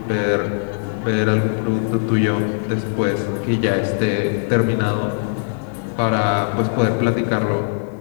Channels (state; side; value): silent; right; 65 dB below the other